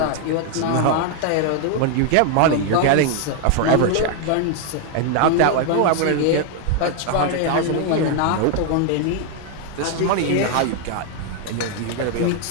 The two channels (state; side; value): different; both; correlation 0.00